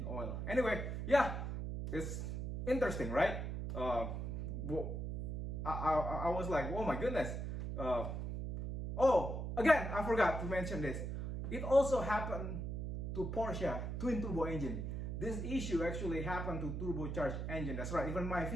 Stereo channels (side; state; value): right; noise; hum, 4 dB below the sound